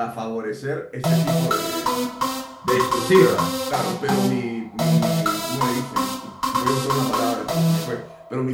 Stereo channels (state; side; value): identical; both; correlation 1.00